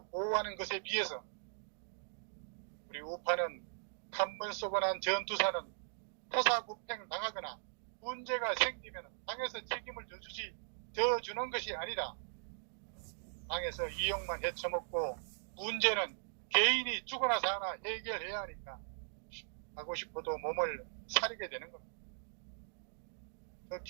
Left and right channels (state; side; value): silent; left; digital silence